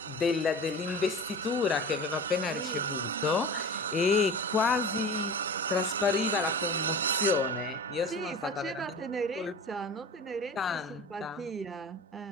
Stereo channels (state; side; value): normal; both; correlation 0.35